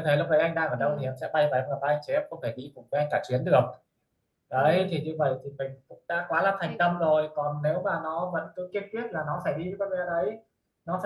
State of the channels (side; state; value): both; identical; correlation 1.00